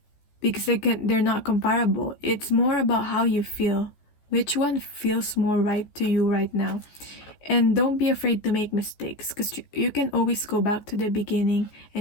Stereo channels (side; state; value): right; late; 14 ms